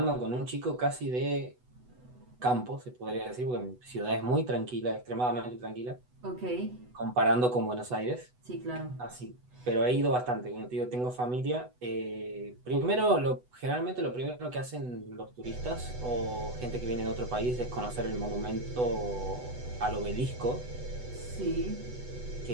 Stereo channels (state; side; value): late; left; 8.1 ms